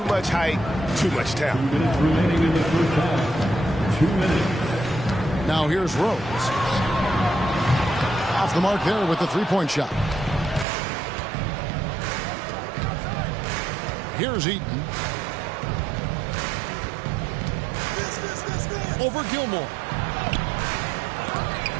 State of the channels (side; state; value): left; drops out; at 10.7 s